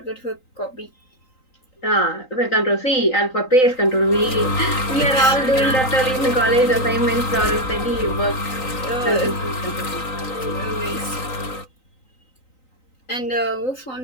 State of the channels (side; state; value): right; late; 3.9 ms